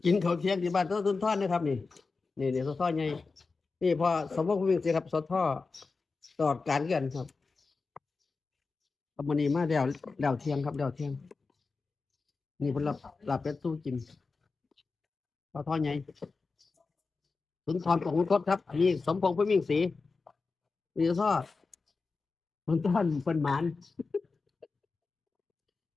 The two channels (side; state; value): right; quieter; 4.3 dB